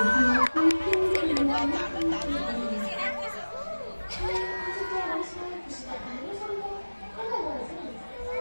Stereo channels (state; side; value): inverted; both; correlation -1.00